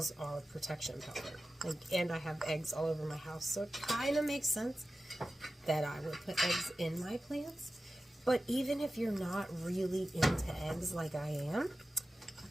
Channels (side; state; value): both; normal; correlation 0.94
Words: are protection powder. And I have eggs all over my house, so it kind of makes sense that I would put eggs in my plants. But even if you're not really into eggs like I am,